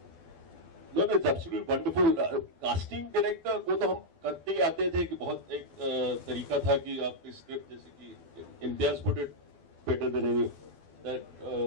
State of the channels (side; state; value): left; late; 12 ms